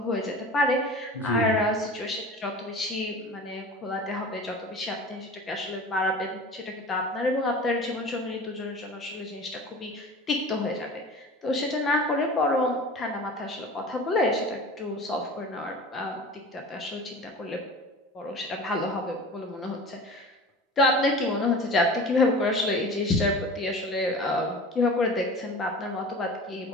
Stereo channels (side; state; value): both; normal; correlation 0.37